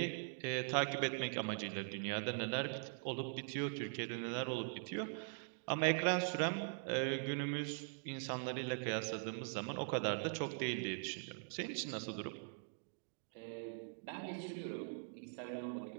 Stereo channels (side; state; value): left; silent; digital silence